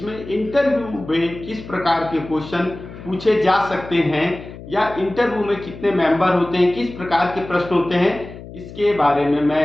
इंटरव्यू में किस प्रकार के क्वेश्चन पूछे जा सकते हैं या इंटरव्यू में कितने मेंबर होते हैं, किस प्रकार के प्रश्न होते हैं, इसके बारे में मैं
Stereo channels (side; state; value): left; noise; hum, 14 dB below the sound